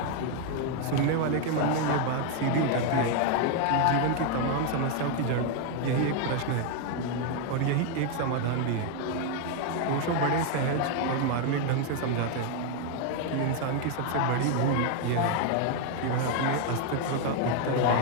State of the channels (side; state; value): both; different; correlation 0.01